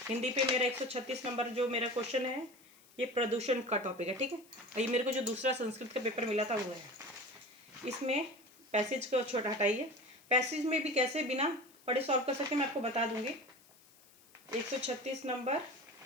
हिंदी पे मेरा 136 नंबर जो मेरा क्वेश्चन है, ये प्रदूषण का टॉपिक है, ठीक है। और ये मेरे को जो दूसरा संस्कृत का पेपर मिला था वो है। इसमें पैसेज को छोटा हटाइए। पैसेज में भी कैसे बिना पढ़े सॉल्व कर सकते मैं आपको बता दूंगी। 136 नंबर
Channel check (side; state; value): left; noise; hiss, 27 dB below the sound